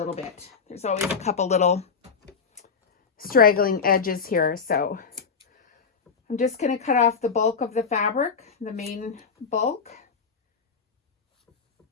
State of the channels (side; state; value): right; quieter; 5.7 dB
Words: bit. There's always a couple little straggling edges here, so I'm just going to cut off the bulk of the fabric, the main bulk.